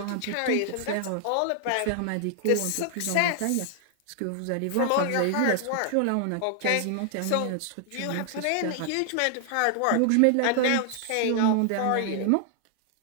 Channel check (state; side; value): different; both; correlation 0.00